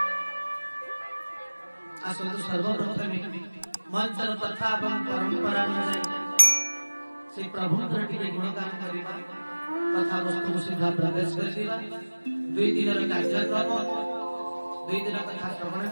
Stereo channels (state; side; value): inverted; both; correlation -1.00